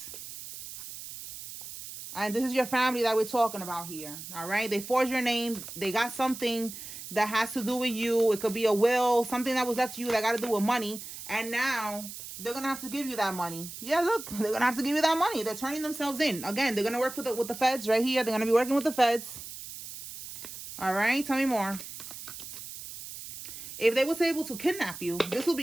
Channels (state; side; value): noise; right; hiss, 11 dB below the sound